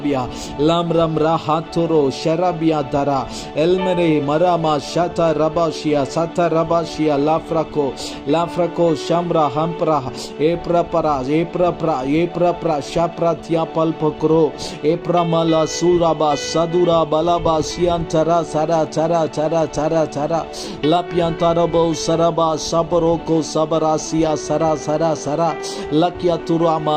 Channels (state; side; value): identical; both; correlation 1.00